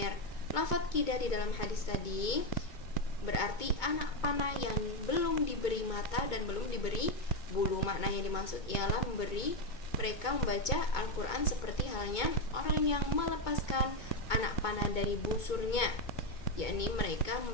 Lafaz kidah di dalam hadis tadi berarti anak panah yang belum diberi mata dan belum diberi bulu. Makna yang dimaksud ialah memberi mereka membaca Al-Quran seperti halnya orang yang melepaskan anak panah dari busurnya, yakni mereka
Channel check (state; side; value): late; right; 2.2 ms